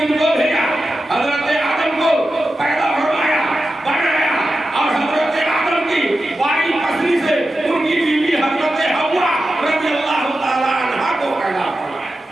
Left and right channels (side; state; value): both; normal; correlation 0.91